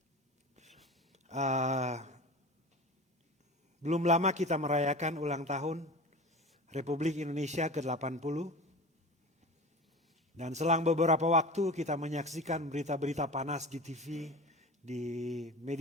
belum lama kita merayakan ulang tahun Republik Indonesia ke-80. Dan selang beberapa waktu kita menyaksikan berita-berita panas di TV, di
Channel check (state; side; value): normal; both; correlation 0.33